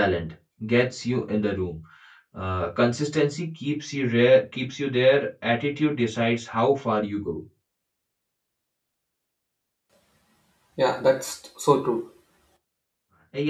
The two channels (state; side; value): identical; both; correlation 1.00